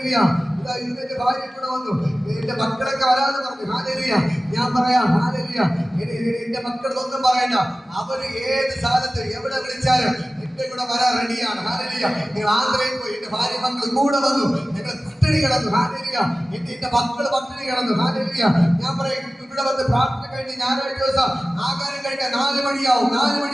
ഇതെന്റെ ഭാര്യ കൂടെ വന്നു, എന്റെ മക്കളൊക്കെ വരാന്ന് പറഞ്ഞു. ഹാലേലൂയ. ഞാൻ പറയാം, ഹാലേലൂയ. എന്റെ മക്കളൊന്നും പറയണ്ട, അവര് ഏത് സ്ഥലത്ത് എവിടെ വിളിച്ചാലും എന്റെ കൂടെ വരാൻ റെഡിയാണ്. ഹാലേലൂയ. നിങ്ങൾ ആന്ധ്രയിൽ പോയി, എന്റെ ഭാര്യ മക്കൾ കൂടെ വന്നു. ഞങ്ങൾ പട്ടിണി കിടന്നു. ഹാലേലൂയ. എന്റെ മക്കൾ പട്ടിണി കിടന്നു. ഹാലേലൂയ. ഞാൻ പറയും, ഇവിടെ വന്ന് പ്രാർത്ഥന കഴിഞ്ഞ് ഞായറാഴ്ച ദിവസം ആഹാരം കഴിക്കാൻ 4 മണിയാവും.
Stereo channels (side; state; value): both; normal; correlation 0.96